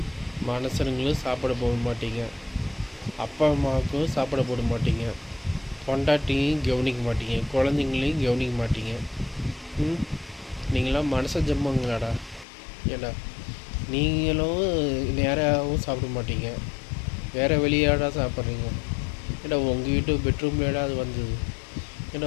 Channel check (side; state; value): right; drops out; at 12.5 s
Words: மனுஷனுங்களும் சாப்பிட போட மாட்டீங்க, அப்பா அம்மாவுக்கும் சாப்பிட போட மாட்டீங்க, பொண்டாட்டியும் கவனிக்க மாட்டீங்க, குழந்தைங்களையும் கவனிக்க மாட்டீங்க. நீங்களாம் மனச ஜம்மங்களாடா. ஏண்டா நீங்களும் நேராகவும் சாப்பிட மாட்டீங்க, வேறு வெளியாடா சாப்பிட்றீங்க. ஏடா உங்கள் வீட்டு பெட்ரூம்லேடா அது வந்தது.